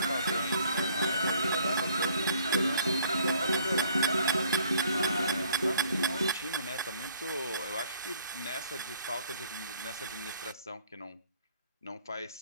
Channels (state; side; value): inverted; both; correlation -0.61